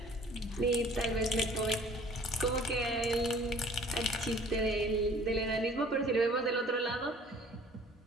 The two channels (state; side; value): normal; both; correlation 0.52